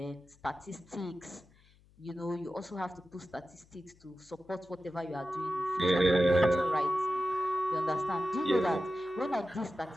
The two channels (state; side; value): noise; left; hum, 29 dB below the sound